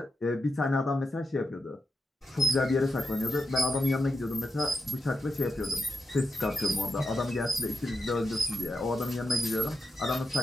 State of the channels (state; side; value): normal; both; correlation 0.87